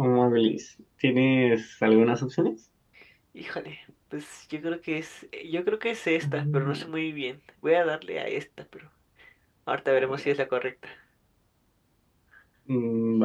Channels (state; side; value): identical; both; correlation 1.00